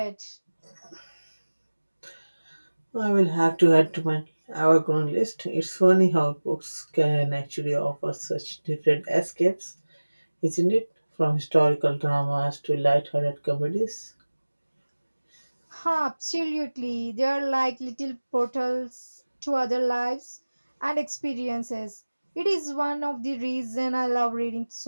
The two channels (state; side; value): inverted; both; correlation -1.00